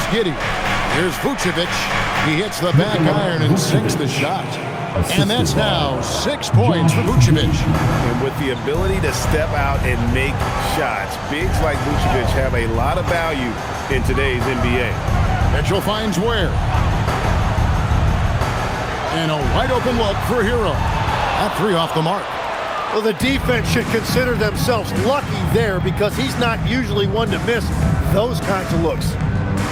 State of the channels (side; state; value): both; identical; correlation 1.00